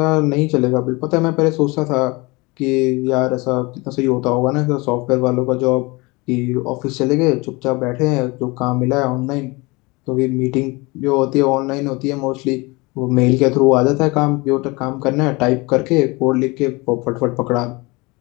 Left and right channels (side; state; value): right; quieter; 24.9 dB